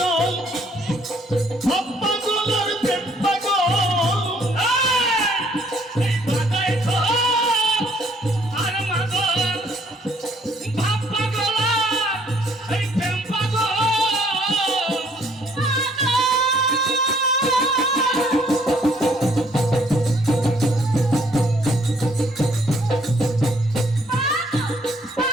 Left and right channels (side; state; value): both; normal; correlation 0.63